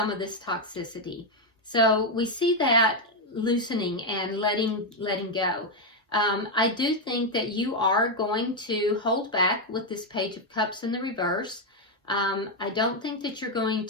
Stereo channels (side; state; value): both; normal; correlation 0.03